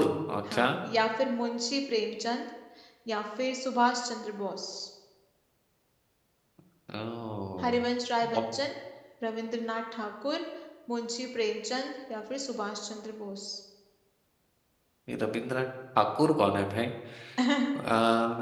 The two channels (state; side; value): identical; both; correlation 1.00